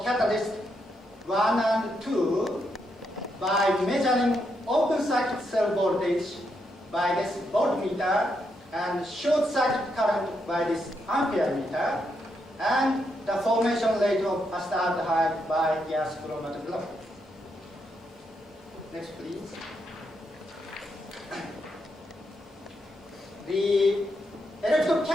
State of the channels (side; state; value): both; normal; correlation 0.80